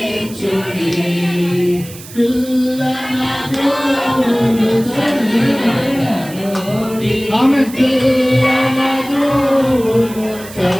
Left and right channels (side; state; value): right; noise; hiss, 17 dB below the sound